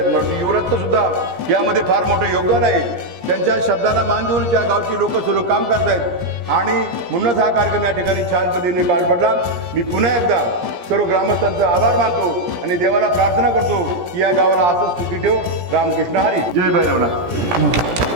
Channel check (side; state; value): left; late; 17 ms